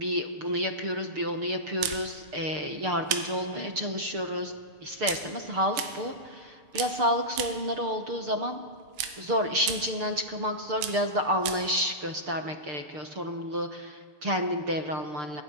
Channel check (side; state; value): left; late; 6.7 ms